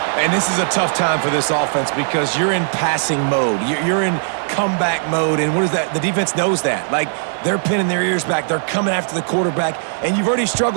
And this is a tough time for this offense because you're in passing mode. You're in comeback mode, and what is that? The defense knows that. Like, they're pinning their ears back. They're coming after the quarterback, and you've already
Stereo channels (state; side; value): silent; left; 57 dB below the other